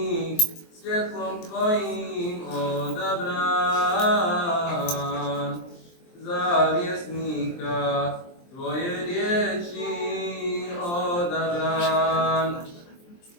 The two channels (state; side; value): late; right; 23 ms